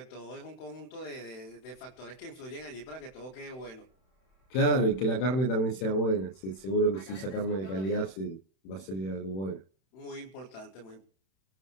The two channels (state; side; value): late; right; 31 ms